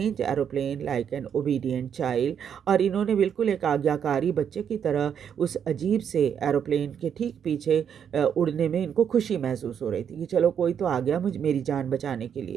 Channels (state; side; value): quieter; left; 8.1 dB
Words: aeroplane like an obedient child। और इन्होंने बिल्कुल एक आज्ञाकारी बच्चे की तरह उस अजीब से एरोप्लेन के ठीक पीछे उड़ने में इनको खुशी महसूस हो रही थी कि चलो कोई तो आ गया मुझे मेरी जान बचाने के